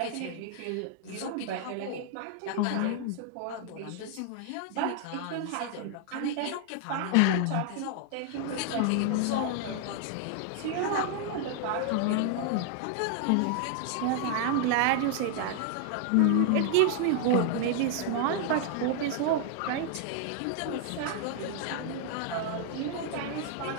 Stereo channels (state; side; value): different; both; correlation 0.00